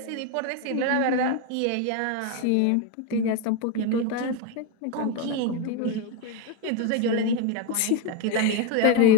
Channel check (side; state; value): both; different; correlation 0.02